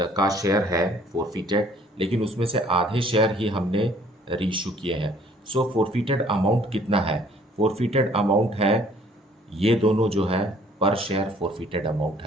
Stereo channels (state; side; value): normal; both; correlation 0.58